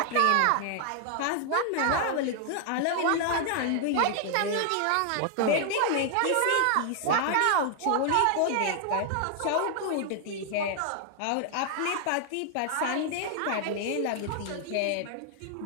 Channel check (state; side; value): different; both; correlation 0.00